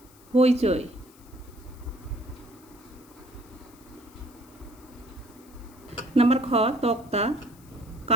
হইচই। নাম্বার খ, তক্তা,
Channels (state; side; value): noise; left; hiss, 26 dB below the sound